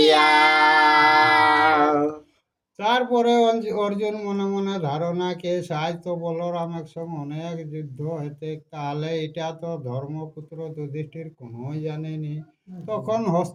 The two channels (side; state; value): both; identical; correlation 1.00